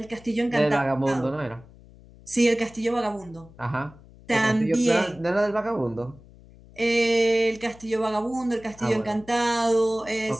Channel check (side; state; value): left; noise; hum, 23 dB below the sound